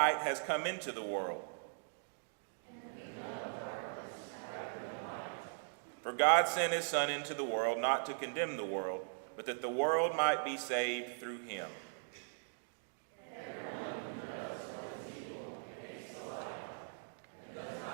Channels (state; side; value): silent; left; digital silence